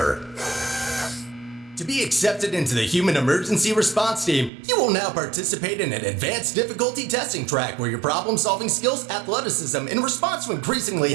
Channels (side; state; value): left; drops out; at 4.5 s